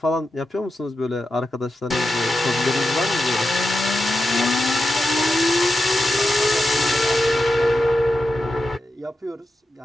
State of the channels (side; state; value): both; normal; correlation 0.90